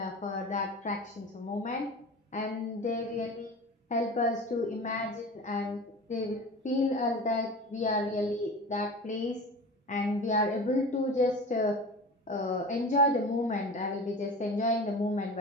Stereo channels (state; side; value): normal; both; correlation 0.34